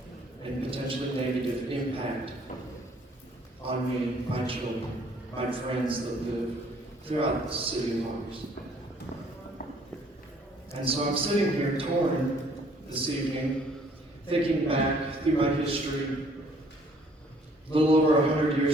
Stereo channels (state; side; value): normal; both; correlation 0.60